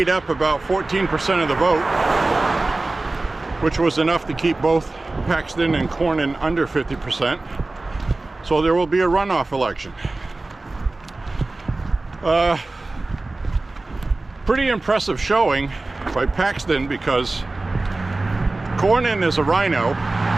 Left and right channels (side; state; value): left; quieter; 3.1 dB